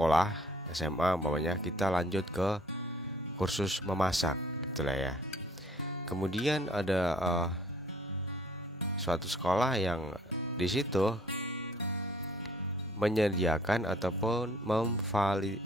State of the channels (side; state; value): both; normal; correlation 0.58